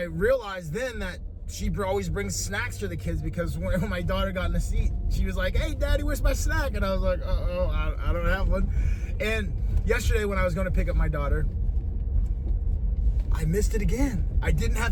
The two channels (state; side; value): identical; both; correlation 1.00